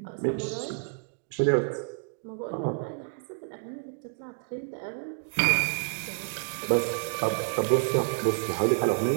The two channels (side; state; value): left; silent; digital silence